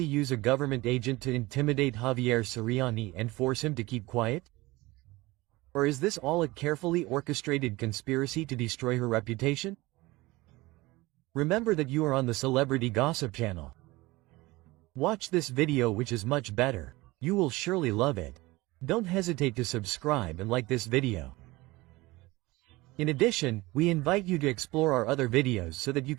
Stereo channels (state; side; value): quieter; left; 20.8 dB